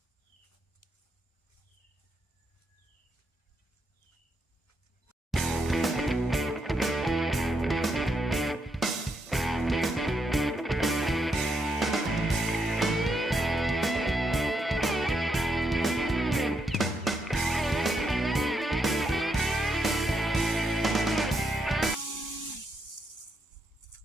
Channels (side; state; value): both; normal; correlation 0.79